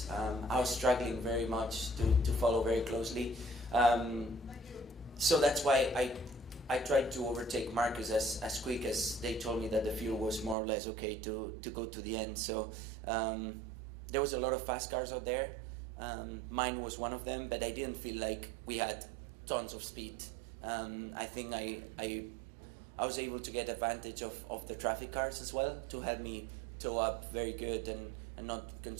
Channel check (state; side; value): drops out; left; at 10.6 s